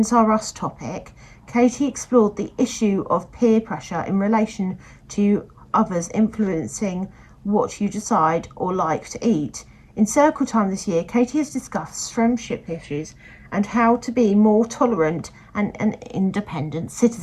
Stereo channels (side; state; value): both; identical; correlation 1.00